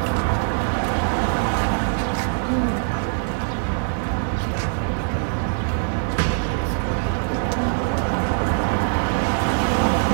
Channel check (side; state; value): left; silent; 61 dB below the other